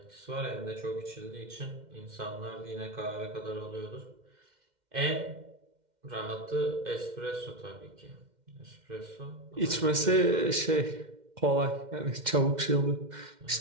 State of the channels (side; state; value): left; late; 2.1 ms